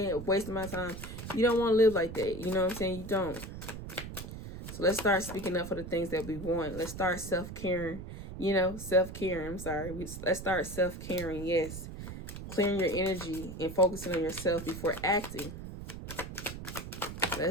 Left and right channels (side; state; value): right; noise; rumble, 10 dB below the sound